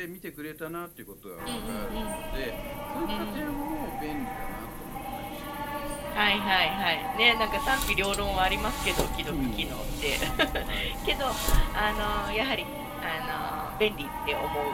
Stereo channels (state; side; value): identical; both; correlation 1.00